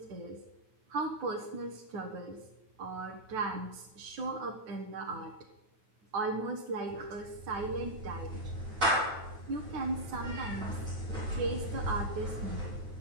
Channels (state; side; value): late; left; 9.3 ms